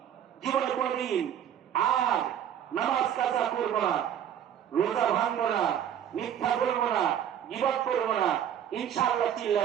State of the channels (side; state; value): left; quieter; 9.6 dB